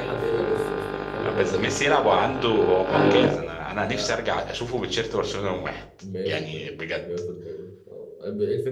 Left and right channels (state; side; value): identical; both; correlation 1.00